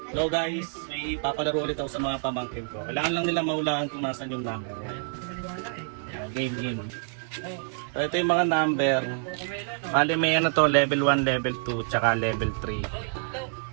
So guys, may papalaro ulit ako sa mga pamangkin ko. Kailangan lang nila mahulaan kung nasan yung number. So, game. So ito yung mga number. Bali may ano to, level 1, level 2, tsaka level 3.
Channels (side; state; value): left; silent; 60 dB below the other